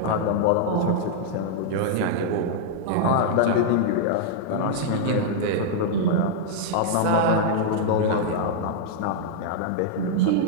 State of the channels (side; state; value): both; different; correlation -0.01